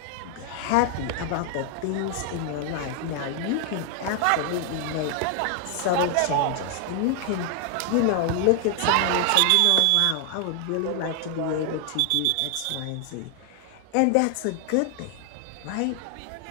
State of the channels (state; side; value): different; both; correlation 0.00